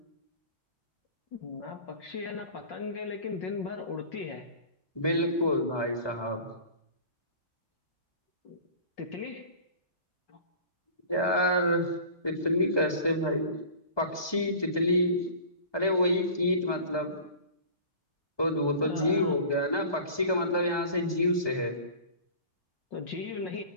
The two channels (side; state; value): right; late; 1.2 ms